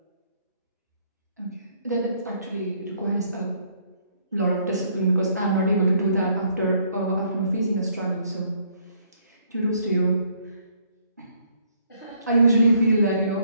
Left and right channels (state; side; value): inverted; both; correlation -0.67